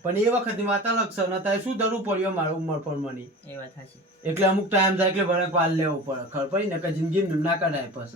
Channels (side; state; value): both; normal; correlation 0.35